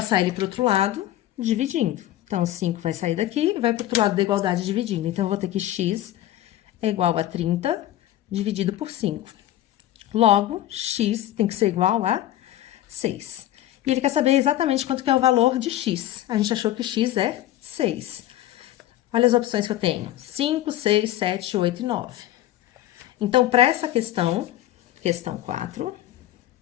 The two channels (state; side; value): quieter; right; 13.6 dB